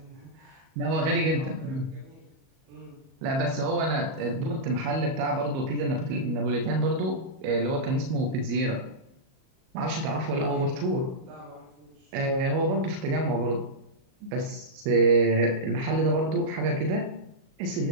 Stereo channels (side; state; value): left; late; 37 ms